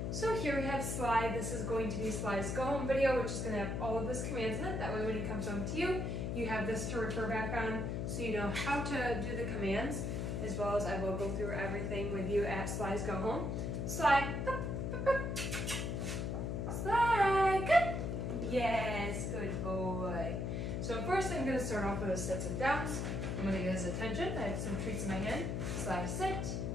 So here we have Sly. This is going to be Sly's go home video, which is going to have all of his commands in it. That way when he comes home to you, you have this to refer back on so you know how to do the commands, as well as I will go through everything with you at Sly's go home. Sly, Sly, good. Yes, good boy. So first I'm going to start off with his sits and downs. I'm going to get his attention. I have some treats in my hand. Sly, sit.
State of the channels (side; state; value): left; noise; hum, 1 dB below the sound